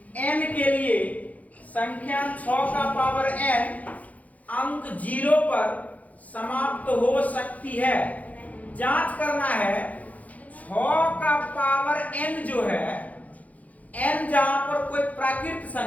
n के लिए संख्या 6 का पावर n अंक 0 पर समाप्त हो सकती है। जांच करना है 6 का पावर n जो है n जहां पर कोई प्राकृत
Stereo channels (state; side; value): late; right; 0.074 ms